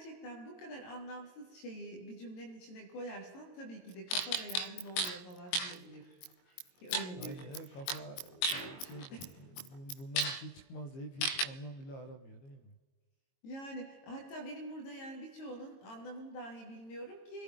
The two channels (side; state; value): right; late; 22 ms